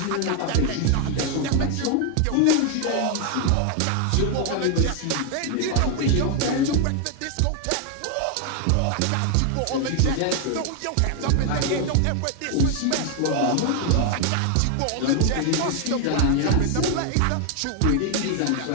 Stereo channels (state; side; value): different; both; correlation 0.00